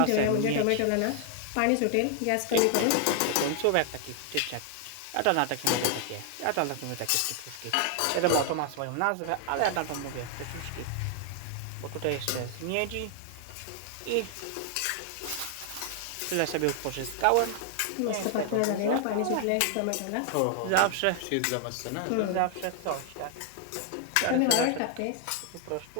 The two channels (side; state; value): both; different; correlation 0.00